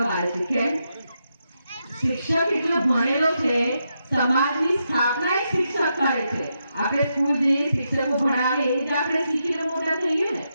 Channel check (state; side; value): inverted; both; correlation -0.84